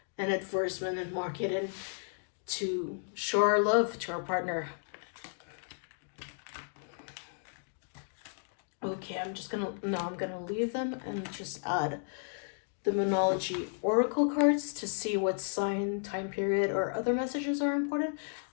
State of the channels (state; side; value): silent; right; digital silence